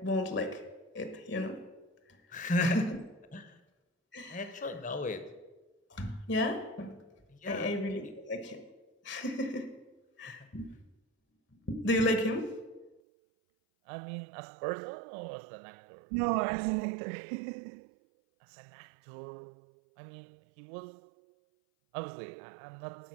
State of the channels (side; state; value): left; drops out; at 13.0 s